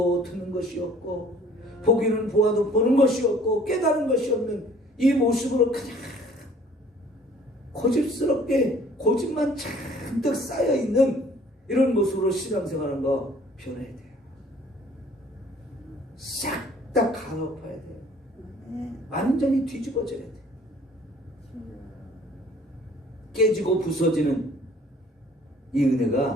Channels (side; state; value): both; normal; correlation 0.55